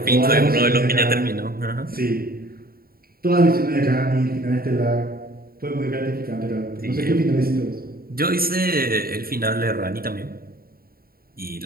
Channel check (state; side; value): late; left; 0.43 ms